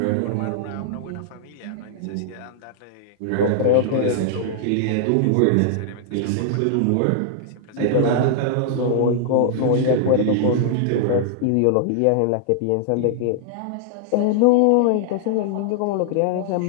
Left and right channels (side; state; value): both; different; correlation -0.01